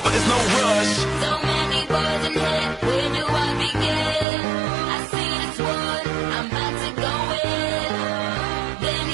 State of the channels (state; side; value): drops out; left; at 4.2 s